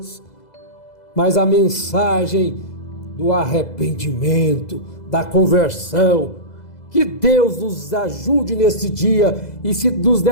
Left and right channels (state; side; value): late; right; 2.0 ms